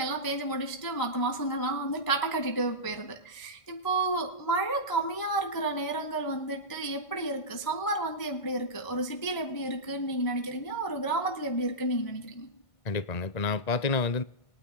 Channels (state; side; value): late; right; 1.5 ms